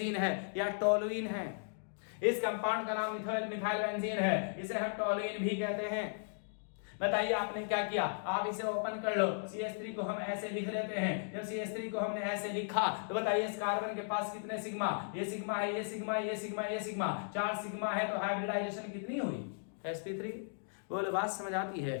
है या टोलुइन है। इस कंपाउंड का नाम मिथाइल बेंजीन है, इसे हम टोलुइन भी कहते हैं। बताइए आपने क्या किया? आप इसे ओपन कर लो। CH3 को हम ऐसे लिख लेते हैं। जब CH3 को हमने ऐसे लिखा तो बताइए इस कार्बन के पास कितने सिग्मा? ये सिग्मा है, ये सिग्मा, ये सिग्मा, ये सिग्मा, 4 सिग्मा है तो हाइब्रिडाइजेशन कितनी हुई? sp3। बोलो बात समझ आती है?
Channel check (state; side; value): silent; right; digital silence